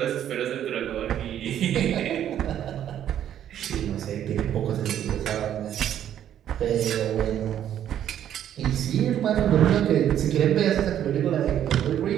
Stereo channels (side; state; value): left; quieter; 10.5 dB